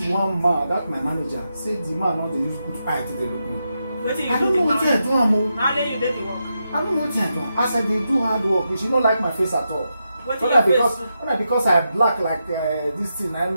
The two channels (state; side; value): inverted; both; correlation -0.86